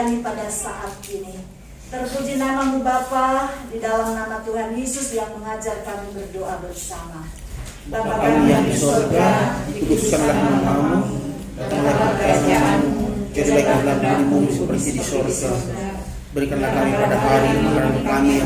pada saat ini. Terpuji nama-Mu Bapa, di dalam nama Tuhan Yesus yang mengajar kami berdoa bersama. Bapa kami yang di surga, dikuduskanlah nama-Mu, datanglah kerajaan-Mu, jadilah kehendakmu seperti di surga. Berikanlah kami pada hari makanan kami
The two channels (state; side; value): identical; both; correlation 1.00